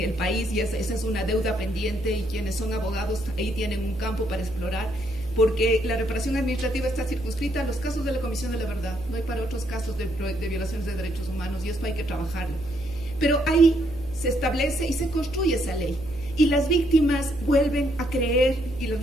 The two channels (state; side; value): noise; right; hum, 15 dB below the sound